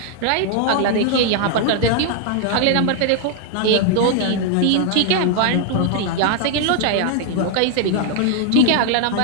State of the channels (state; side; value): different; both; correlation 0.00